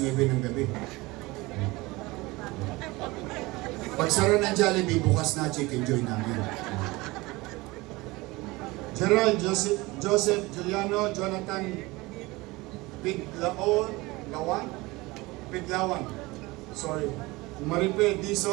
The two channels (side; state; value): left; quieter; 22.0 dB